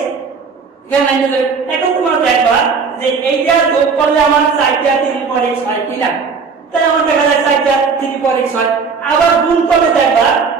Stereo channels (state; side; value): quieter; left; 5.3 dB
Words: এখন তোমরা দেখবা যে এইটা যোগ করলে আমার 4টা 3 পর x হয় কি না, তাহলে আমার দেখা যায় 4টা 3 পর x হয়। আবার গুণ করলে দেখবা